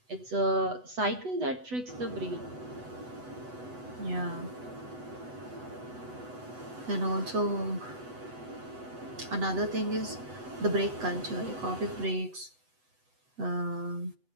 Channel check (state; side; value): late; left; 8.0 ms